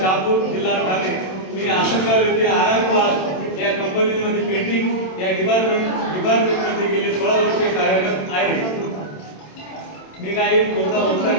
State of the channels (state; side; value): late; right; 27 ms